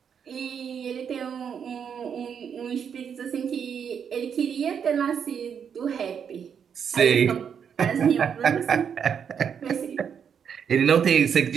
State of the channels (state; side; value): quieter; left; 7.5 dB